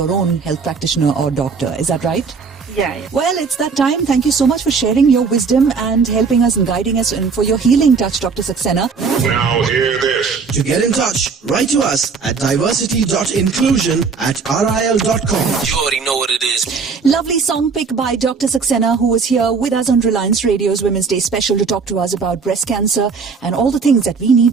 own health practitioner or doctor. Is that right? Yeah. Well, it's that time. Thank you so much for sharing your wisdom and helping us and guiding us, and for your healing touch, Dr. Saxena. Now hear this. To get in touch, write to us at diversity.inclusion@ril.com. You already know what it is. Lovely song pick by Dr. Saxena, who was here with us on Reliance Radio's Women's Day special to talk to us about breast cancer and all the things that we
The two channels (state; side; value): quieter; left; 5.2 dB